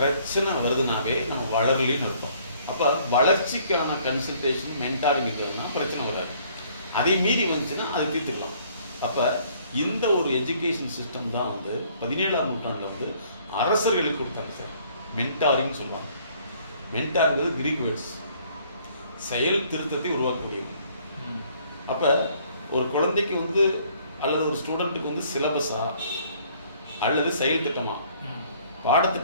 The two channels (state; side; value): inverted; both; correlation -0.61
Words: வருதுனாவே நம்ம வளரலின்னு அர்த்தம். அப்போ வளர்ச்சிக்கான கன்சல்டேஷன் மென்டாரிங் இருந்ததுன்னா பிரச்சனை வராது. அதை மீறி வந்துச்சுன்னா அதை தீர்த்துக்கலாம். அப்போ இந்த ஒரு எஜுகேஷன் சிஸ்டம் தான் வந்து 17ஆம் நூற்றாண்டில் வந்து அரசர்களுக்கு கொடுத்தாங்க சார். மென்டாரிங் சொல்லுவாங்க. மென்டாருங்கிறது கிரீக் வேர்ட்ஸ், செயல் திருத்தத்தை உருவாக்கக்கூடியது. அப்போ ஒரு குழந்தைக்கு வந்து அல்லது ஒரு ஸ்டூடெண்ட்டுக்கு வந்து சிலபஸா அல்லது செயல் திட்டமா,